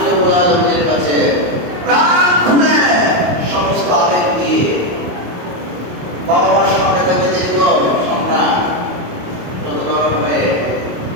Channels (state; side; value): late; left; 28 ms